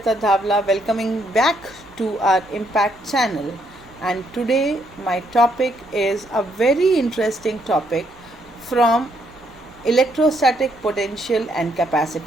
Dhavla welcoming back to our Impact channel. And today my topic is a very interesting topic from electrostatic potential and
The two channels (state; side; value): normal; both; correlation 0.73